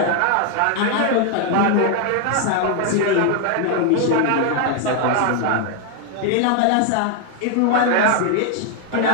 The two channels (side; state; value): both; different; correlation 0.00